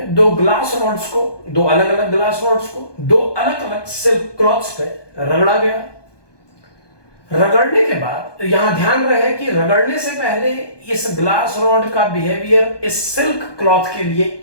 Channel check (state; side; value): late; right; 1.2 ms